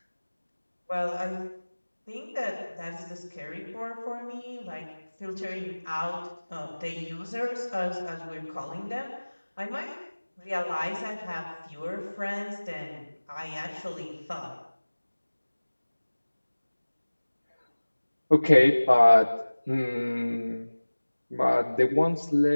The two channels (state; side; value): inverted; both; correlation -1.00